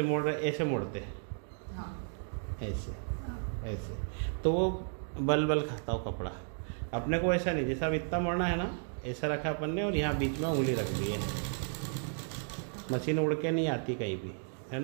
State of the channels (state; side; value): silent; left; 55 dB below the other